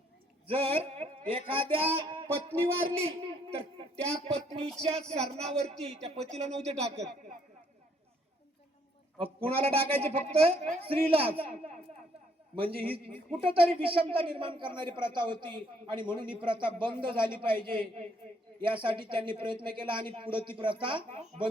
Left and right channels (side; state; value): both; normal; correlation 0.68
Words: जर एखाद्या पत्नी वारली तर त्या पत्नीच्या सरणावरती त्या पतीला नव्हते टाकत, कुणाला टाकायचे, फक्त स्त्रीलाच. म्हणजे ही कुठंतरी विषमता निर्माण करणारी प्रथा होती. आणि म्हणून ही प्रथा बंद झाली पाहिजे, यासाठी त्यांनी प्रयत्न केला. आणि पुढे ती प्रथा